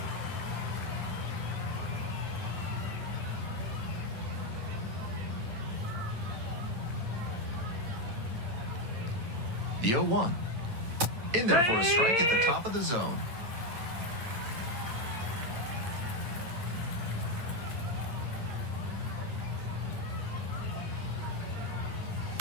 The 0-1. In there for a strike at the top of the zone.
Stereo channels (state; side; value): late; left; 8.7 ms